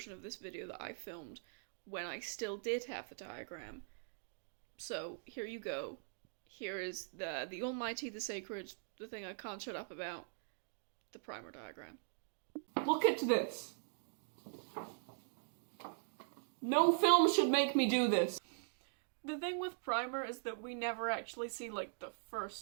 of this video that I filmed when I still did have the diagram. So, here you go. Here is the almighty, the sacred, the thing I can't shut up about, the Primer diagram. Look at this! No film should make me do this! The thing with Primer is that we never actually see, like, the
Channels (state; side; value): silent; left; digital silence